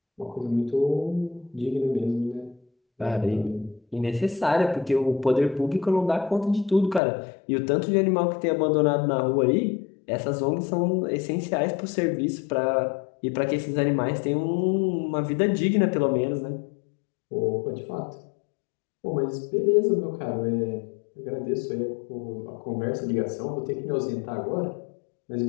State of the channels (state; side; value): drops out; right; at 7.0 s